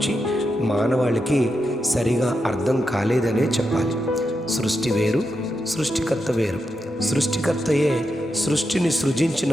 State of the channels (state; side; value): normal; both; correlation 0.86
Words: మానవాళికి సరిగా అర్థం కాలేదనే చెప్పాలి. సృష్టి వేరు, సృష్టికర్త వేరు. సృష్టికర్తయే సృష్టిని సృజించిన